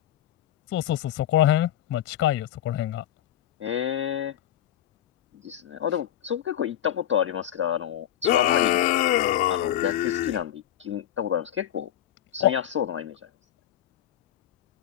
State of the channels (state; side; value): quieter; right; 11.6 dB